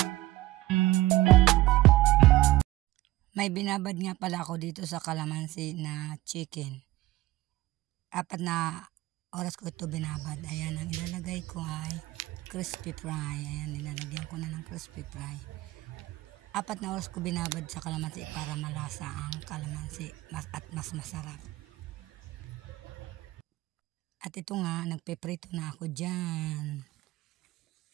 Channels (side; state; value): left; quieter; 17.5 dB